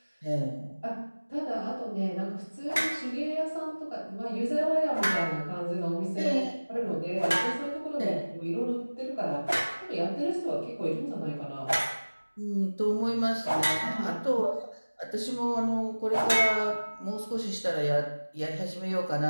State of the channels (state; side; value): inverted; both; correlation -1.00